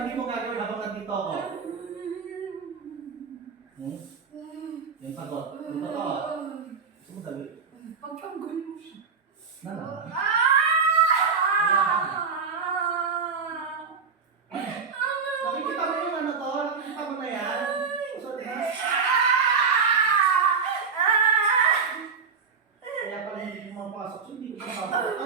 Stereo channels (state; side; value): quieter; left; 5.7 dB